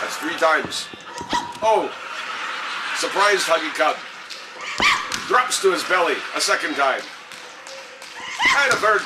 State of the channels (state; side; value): identical; both; correlation 1.00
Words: 3 times. Oh! Surprised Huggy Cub. Drops to his belly a 2nd time. And a 3rd